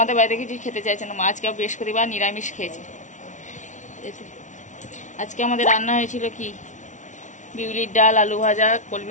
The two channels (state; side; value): late; right; 0.36 ms